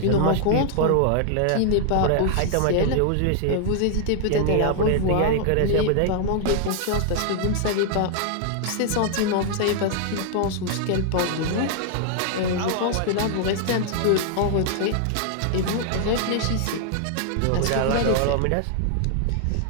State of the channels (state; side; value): different; both; correlation -0.01